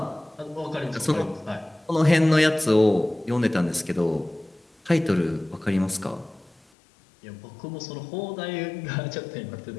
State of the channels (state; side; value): drops out; right; at 6.6 s